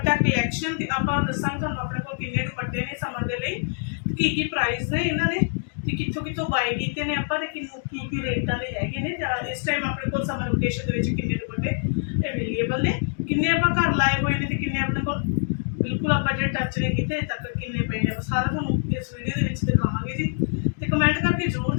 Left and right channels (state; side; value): silent; right; digital silence